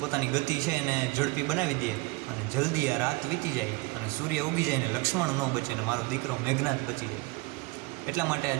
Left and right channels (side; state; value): left; quieter; 23.3 dB